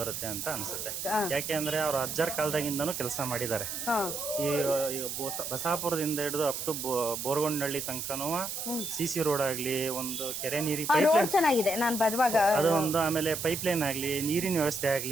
ಅಂತ ಅನ್ಸುತ್ತೆ. ಯಾಕೆಂದ್ರೆ ಅವ್ರ ಅಜ್ಜಾರ್ ಕಾಲದಾಗಿಂದನೂ ಕೆಲಸ ಮಾಡಿದ್ದಾರೆ. ಈ ಬಸಾಪುರದಿಂದ ಹಿಡಿದು ಅಪ್ ಟು ಬೋರ್ಗೊಂಡಳ್ಳಿ ತನಕನೂ CC ರೋಡ್ ಆಗ್ಲಿ, ಒಂದು ಕೆರೆ ನೀರಿ ರೋಡ್ ಚೆನ್ನಾಗಿದೆ ನಾನು ಬರುವಾಗ, ಅದು ಒಂದು, ಆಮೇಲೆ ಪೈಪ್ ಲೈನ್ ಆಗ್ಲಿ, ನೀರಿನ ವ್ಯವಸ್ಥೆ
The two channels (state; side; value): noise; right; hiss, 5 dB below the sound